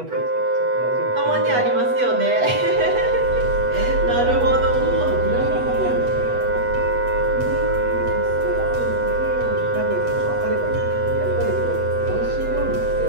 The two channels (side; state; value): left; late; 8.1 ms